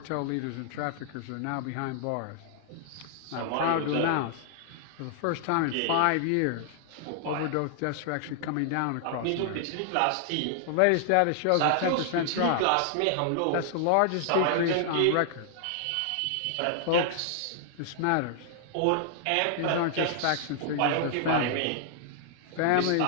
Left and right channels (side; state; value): both; different; correlation 0.00